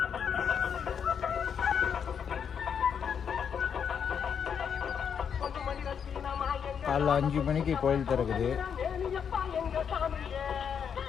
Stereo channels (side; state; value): right; quieter; 7.4 dB